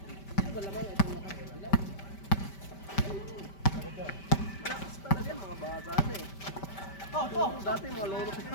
Malakas talaga mga bata na eh. Dati mga lolo ko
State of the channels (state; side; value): late; right; 5.1 ms